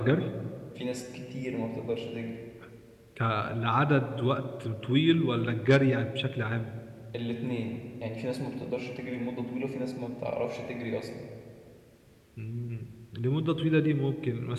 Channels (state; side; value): identical; both; correlation 1.00